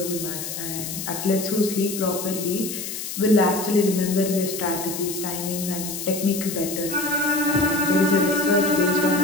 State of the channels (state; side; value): noise; left; hiss, 7 dB below the sound